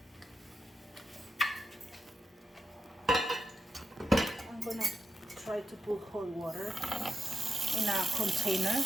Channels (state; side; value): normal; both; correlation 0.89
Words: I'm gonna try to put hot water in a container,